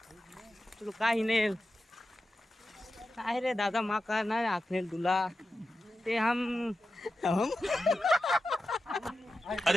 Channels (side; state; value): both; normal; correlation 0.92